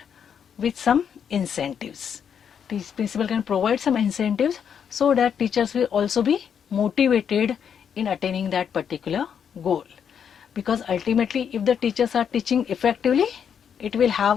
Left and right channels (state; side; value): quieter; right; 7.8 dB